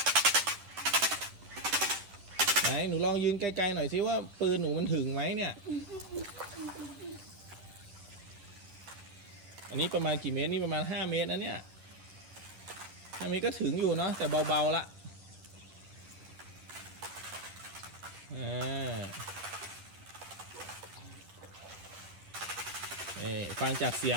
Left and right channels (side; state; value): left; late; 10 ms